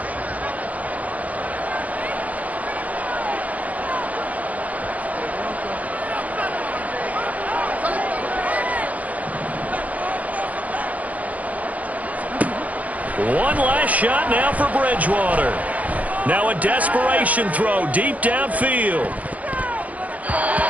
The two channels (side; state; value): left; late; 0.072 ms